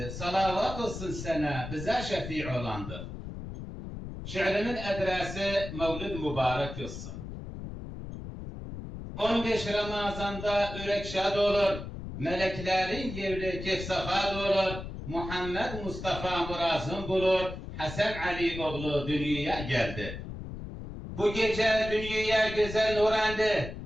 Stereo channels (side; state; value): left; noise; rumble, 9 dB below the sound